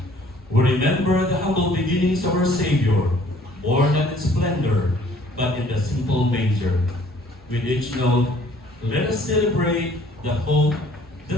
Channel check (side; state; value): both; normal; correlation 0.57